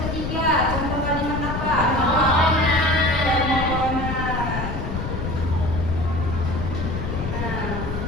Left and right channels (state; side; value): noise; left; rumble, 4 dB below the sound